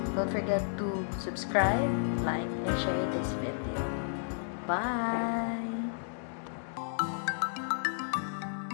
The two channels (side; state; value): right; silent; digital silence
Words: Don't forget to subscribe, like, and share this video. Bye!